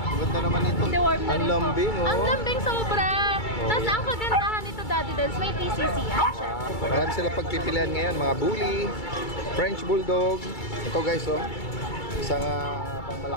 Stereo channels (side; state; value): right; late; 2.3 ms